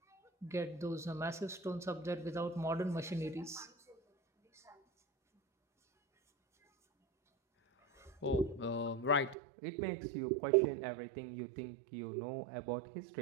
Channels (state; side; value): drops out; left; at 9.3 s